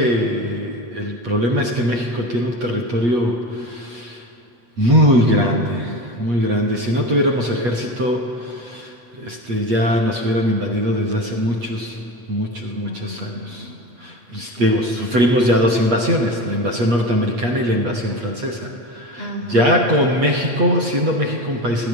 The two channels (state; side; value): late; left; 8.4 ms